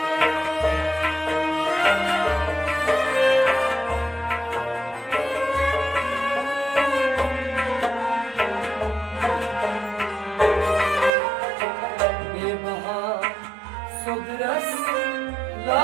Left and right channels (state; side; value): drops out; left; at 11.1 s